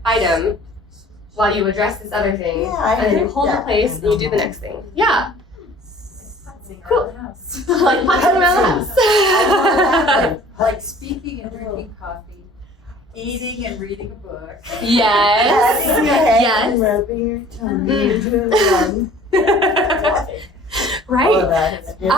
item while you address this other thing, Yeah, I and then you heard hold the that. place and you do the next thing. Yeah. Cool. Like punching around the house. Like speaking and drinking coffee, eating and reading a book. Yes. Patting your head Yes. and rubbing your tummy and doing one. Right. Oh, that's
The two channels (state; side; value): normal; both; correlation 0.50